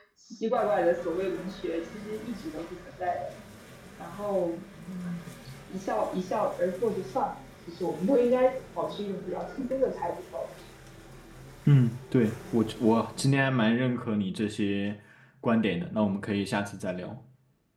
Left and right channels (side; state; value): both; identical; correlation 1.00